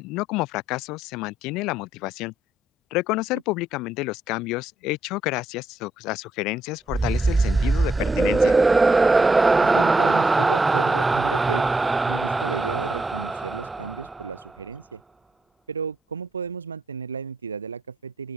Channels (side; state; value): both; normal; correlation 0.78